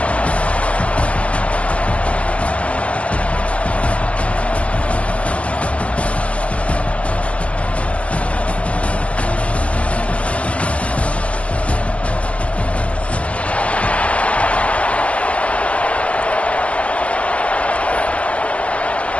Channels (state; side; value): late; right; 0.063 ms